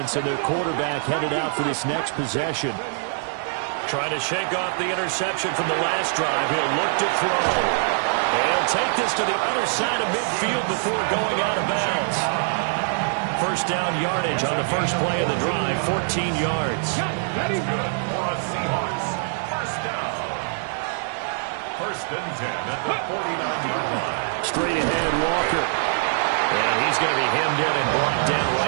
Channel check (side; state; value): left; silent; digital silence